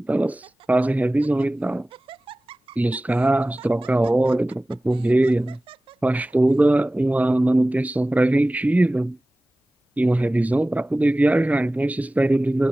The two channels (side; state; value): both; normal; correlation 0.97